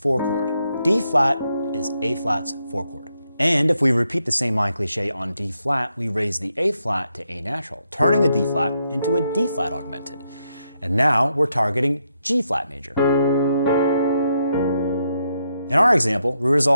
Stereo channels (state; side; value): inverted; both; correlation -0.80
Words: chord. D flat is A flat's four chord. And if we repeat the same line cliche on D flat, we raise the A flat to A natural, turning the D flat into a D flat augmented. And now we're targeting G flat major. In our example, we